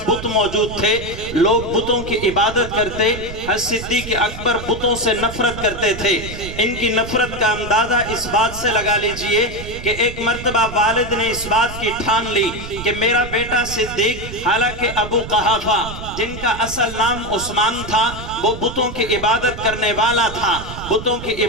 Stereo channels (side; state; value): right; noise; rumble, 11 dB below the sound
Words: بت موجود تھے، لوگ بتوں کی عبادت کرتے. حضرت صدیق اکبر بتوں سے نفرت کرتے تھے. ان کی نفرت کا اندازہ اس بات سے لگا لیجئے کہ ایک مرتبہ والد نے اس بات کی ٹھان لی کہ میرا بیٹا صدیق، حالانکہ ابو قحافہ جن کا اصل نام عثمان تھا وہ بتوں کی عبادت کرنے والا تھا، بتوں کی